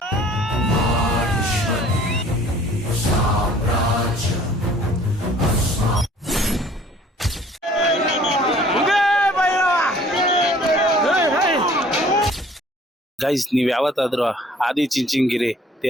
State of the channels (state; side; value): normal; both; correlation 0.54